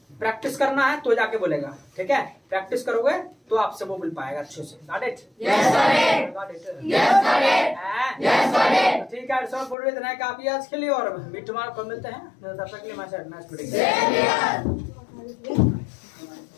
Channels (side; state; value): right; drops out; at 9.8 s